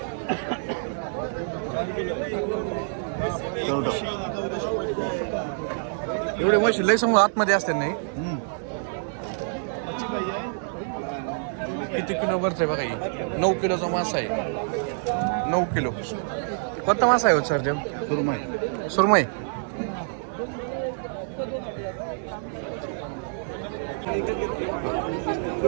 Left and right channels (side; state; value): left; silent; digital silence